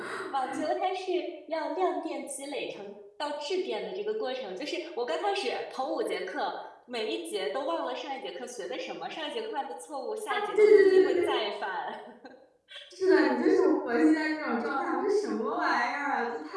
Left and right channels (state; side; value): identical; both; correlation 1.00